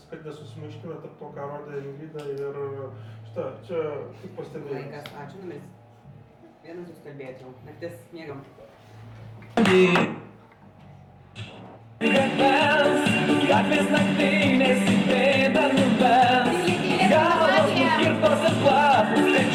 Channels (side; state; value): both; identical; correlation 1.00